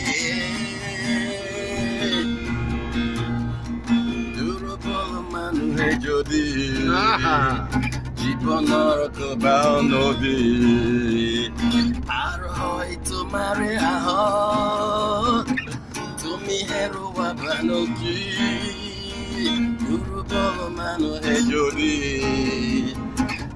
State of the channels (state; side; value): identical; both; correlation 1.00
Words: দুৰ্বল মানুহে যদি জীৱনৰ কোবাও নদী পাৰ হয় তোমাৰে আহক তুমি হেৰুৱাবানো কি দুৰ্বল মানুহে যদি